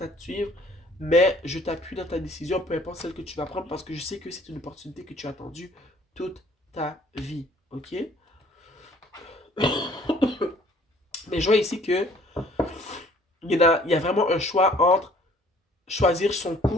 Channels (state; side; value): normal; both; correlation 0.56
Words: à te suivre. Mais je t'appuie dans ta décision, peu importe celle que tu vas prendre, parce que je sais que c'est une opportunité que tu as attendue toute ta vie, ok? Mais je vois ici que il y a vraiment un choix entre choisir son